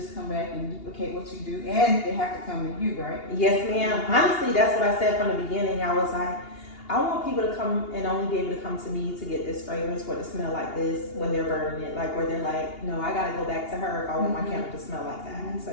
come back and duplicate what you do, and they have to come to you, right? Yes, ma'am. Honestly, that's what I said from the beginning. I was like, I want people to come and only be able to come to me to get this fragrance or to smell like this when they're burning it. Like where they're like, no, I gotta go back to her if I want my candle to smell like that.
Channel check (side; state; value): right; late; 2.8 ms